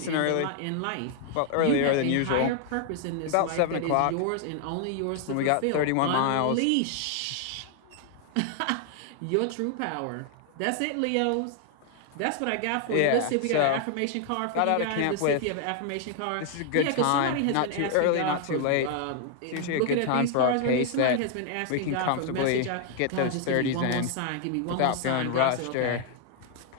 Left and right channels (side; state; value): both; different; correlation 0.00